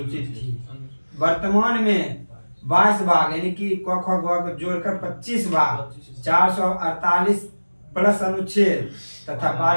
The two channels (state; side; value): inverted; both; correlation -1.00